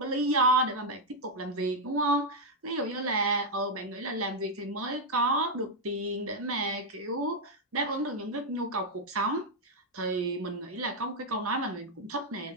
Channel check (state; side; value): normal; both; correlation -0.01